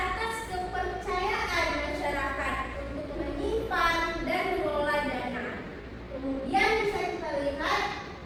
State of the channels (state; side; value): identical; both; correlation 1.00